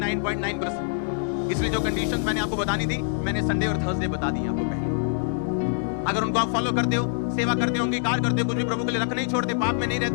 इसलिए जो कंडीशंस मैंने आपको बतानी थी मैंने संडे और थर्सडे बता दी आपको पहले। अगर उनको आप फॉलो करते हो, सेवा करते हो, अंगीकार करते हो, कुछ भी प्रभु के लिए रख नहीं छोड़ते, पाप में नहीं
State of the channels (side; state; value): right; silent; 62 dB below the other